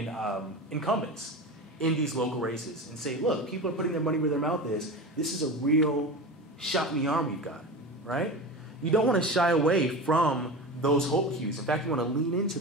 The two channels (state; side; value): normal; both; correlation 0.28